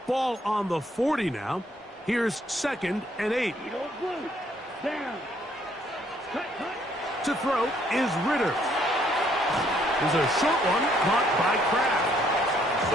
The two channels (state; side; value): normal; both; correlation 0.67